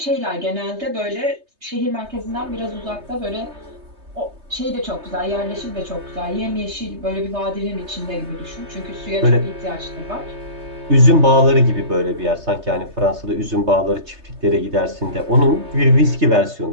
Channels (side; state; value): left; late; 3.3 ms